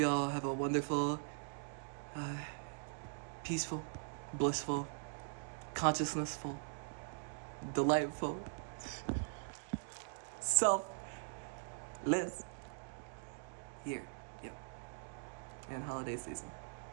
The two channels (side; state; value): left; silent; digital silence